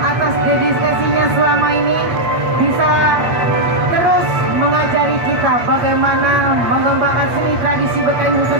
atas dedikasinya selama ini bisa terus mengajari kita bagaimana mengembangkan seni tradisi Betawi,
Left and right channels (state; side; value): late; left; 8.8 ms